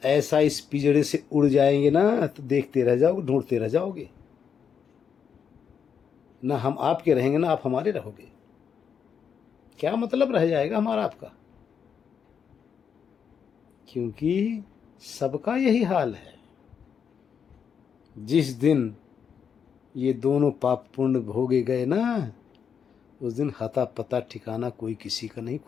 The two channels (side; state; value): right; quieter; 7.2 dB